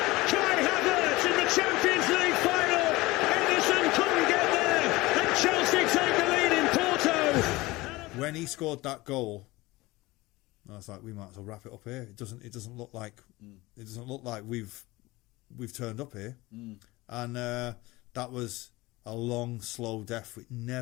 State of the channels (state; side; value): quieter; right; 20.6 dB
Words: Kai Havertz in the the Champions League final. Edison couldn't get there, and Chelsea take the lead in Porto. When he scored that goal, I was like, we might as well wrap it up here. It doesn't look like we've turned up here. And that was a long, slow death. It